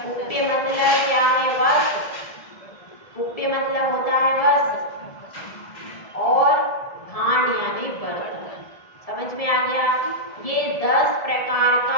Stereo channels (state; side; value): late; right; 1.7 ms